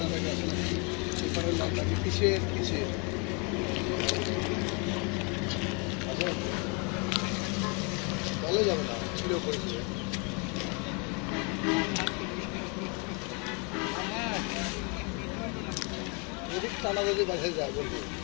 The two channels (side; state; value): right; quieter; 33.3 dB